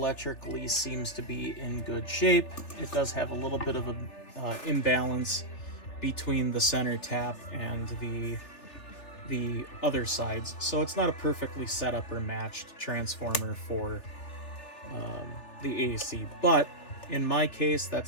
seems to be in good shape. It does have a little bit of an imbalance between the center tap and the other sides, so it's not a perfectly set up or matched transformer for the AC. But in my case,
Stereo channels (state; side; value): late; right; 3.4 ms